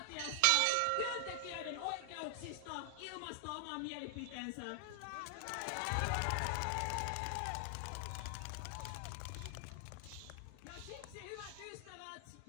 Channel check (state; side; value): different; both; correlation 0.00